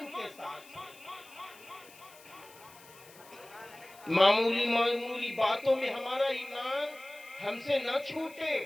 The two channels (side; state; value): left; noise; hiss, 22 dB below the sound